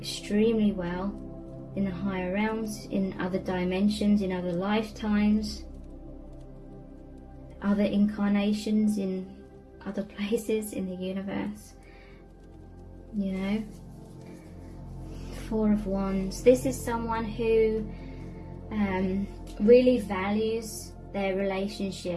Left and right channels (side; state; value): both; identical; correlation 1.00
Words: well. in the higher realms, in other dimensions, in other lifetimes, other incarnations, in other places in the universe. You know, Four of Wands. This is someone who really values their